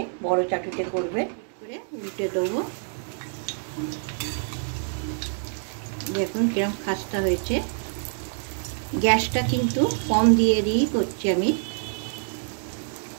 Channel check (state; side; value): silent; left; digital silence